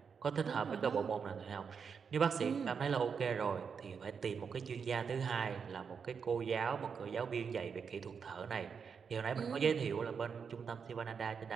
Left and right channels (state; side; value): quieter; left; 6.2 dB